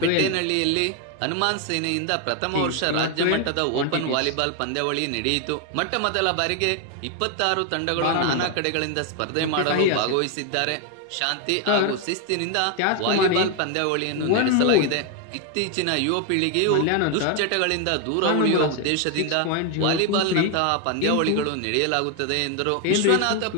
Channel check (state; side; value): different; both; correlation 0.01